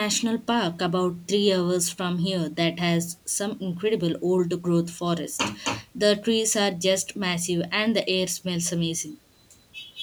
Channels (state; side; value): identical; both; correlation 1.00